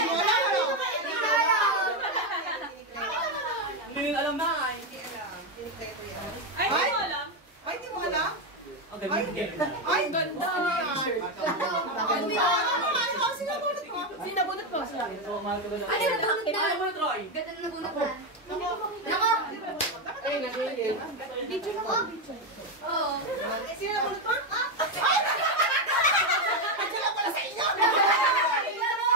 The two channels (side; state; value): both; normal; correlation 0.07